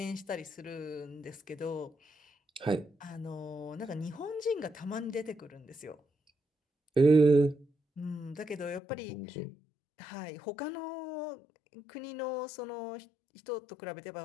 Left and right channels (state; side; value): drops out; right; at 8.8 s